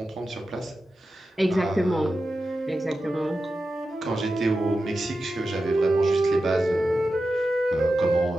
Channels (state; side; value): normal; both; correlation 0.92